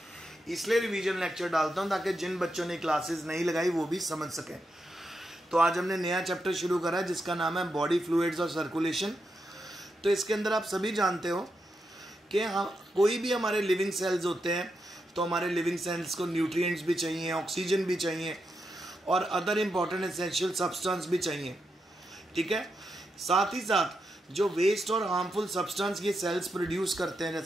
इसलिए रिवीजन लेक्चर डालता हूँ ताकि जिन बच्चों ने क्लासेस नहीं लगाई वो भी समझ सकें। तो आज हमने नया चैप्टर शुरू करा है जिसका नाम है बॉडी फ्लूइड्स और सर्कुलेशन। तो इसके अंदर आप सभी जानते हो कि कोई भी हमारे लिविंग सेल्स होते हैं तो हमारे लिविंग सेल्स को न्यूट्रिएंट्स भी चाहिए, ऑक्सीजन भी चाहिए और अदर इम्पॉर्टेंट एसेंशियल सब्सटेंस भी चाहिए। ठीक है, साथ ही साथ जो वेस्ट और हार्मफुल सब्सटेंस ये सेल्स प्रोड्यूस करते हैं,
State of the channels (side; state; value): both; normal; correlation 0.85